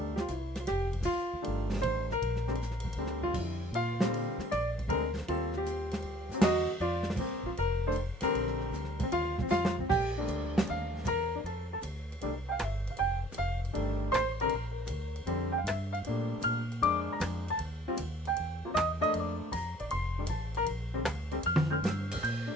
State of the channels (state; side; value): normal; both; correlation 0.58